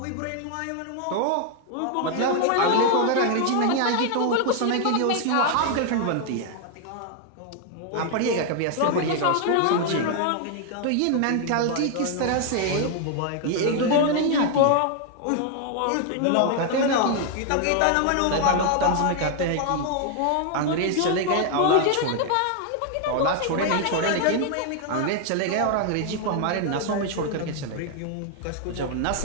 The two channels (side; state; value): both; different; correlation 0.00